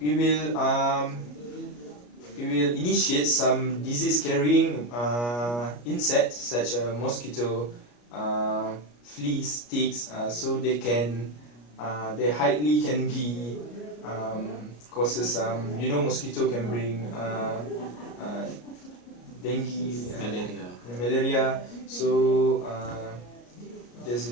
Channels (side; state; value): right; late; 34 ms